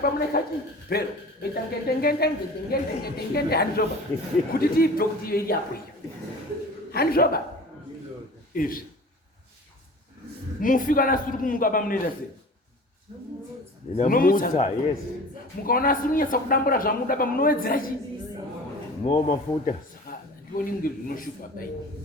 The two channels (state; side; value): normal; both; correlation 0.41